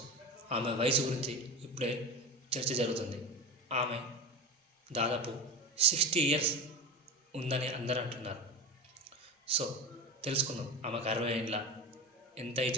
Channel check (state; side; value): normal; both; correlation 0.26